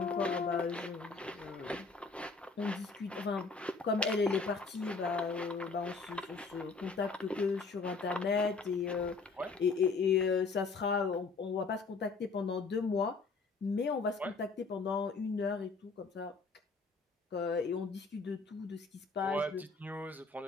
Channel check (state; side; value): quieter; right; 4.3 dB